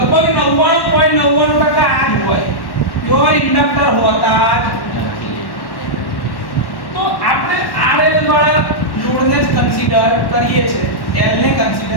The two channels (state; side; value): late; right; 1.1 ms